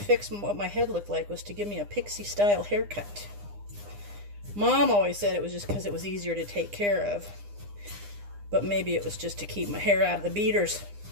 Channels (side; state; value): left; late; 9.8 ms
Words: what my head looked like, was to give me a pixie-style haircut. Mom always said it was just because it was easier to take care of. But maybe it was just to keep my hair out of the beaters.